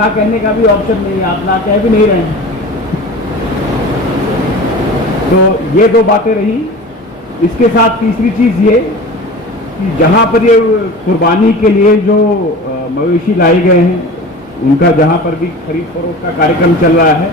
कहने का भी ऑप्शन नहीं है, आप ना कह भी नहीं रहे हैं। तो ये दो बातें रही। इसके साथ तीसरी चीज़ ये कि जहाँ पर ये कुर्बानी के लिए जो मवेशी लाए गए हैं, उनका जहाँ पर भी खरीद फरोख्त का कार्यक्रम चल रहा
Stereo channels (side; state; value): both; normal; correlation 0.36